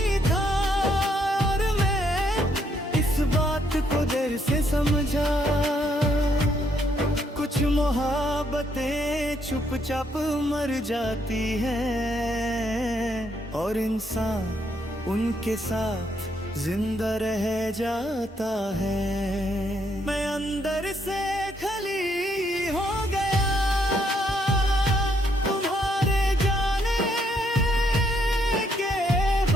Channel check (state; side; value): normal; both; correlation 0.73